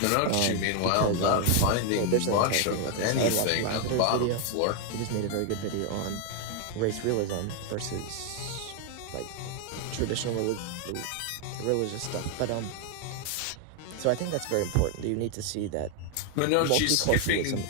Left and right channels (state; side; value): different; both; correlation 0.00